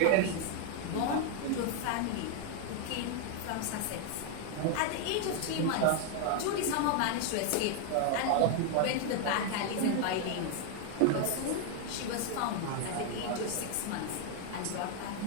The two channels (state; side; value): different; both; correlation 0.00